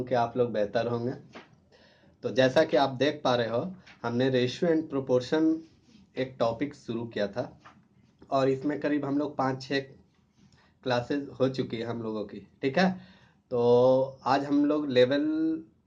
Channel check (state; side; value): identical; both; correlation 1.00